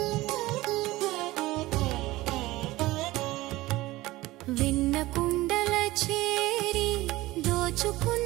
వెన్న కుండల చేరి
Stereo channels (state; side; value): quieter; left; 18.5 dB